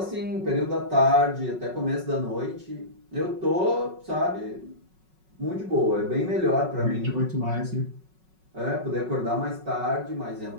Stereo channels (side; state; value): left; late; 5.4 ms